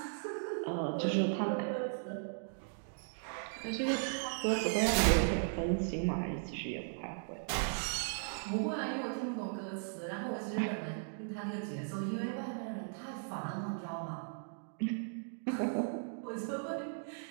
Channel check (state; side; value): silent; left; digital silence